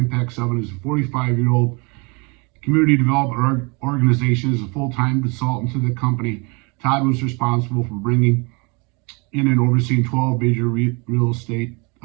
7 is a 45-year-old community development organization, is a full-time consultant to the company. Todd was responsible for bringing in and overseeing 12 major real estate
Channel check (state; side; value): quieter; left; 30.0 dB